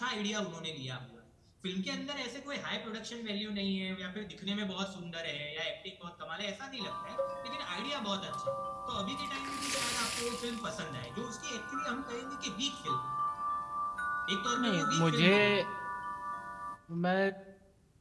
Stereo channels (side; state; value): both; identical; correlation 1.00